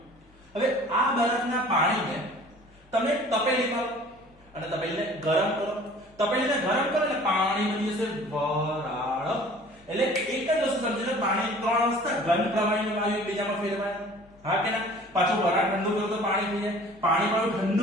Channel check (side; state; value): both; normal; correlation 0.48